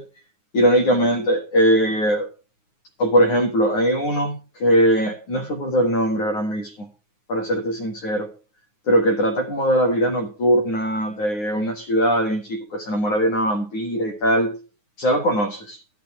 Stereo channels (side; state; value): right; late; 9.6 ms